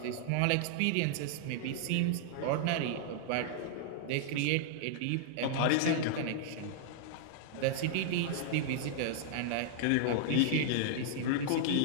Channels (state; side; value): different; both; correlation -0.01